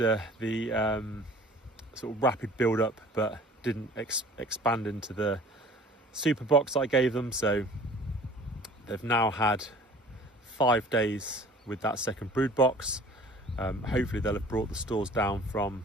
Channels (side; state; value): both; normal; correlation 0.48